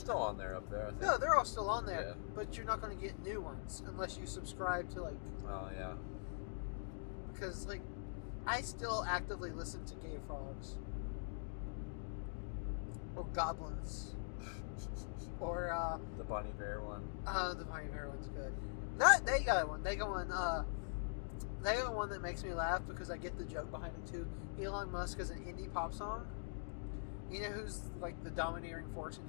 on there up there, I think. No, they're all still on there, Yeah. but you're not going to get new ones unless you subscribe to, like, Oh, yeah. because, like, I still actively listen to Gay Frogs. Or Goblins. Or, The Bonnie Bear one. the Bonnie Bear one's good. They got one. They got one that makes me laugh because I get the joke behind it too. Elon Musk is an indie pop song. You know who's like the domineering force in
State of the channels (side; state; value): right; silent; digital silence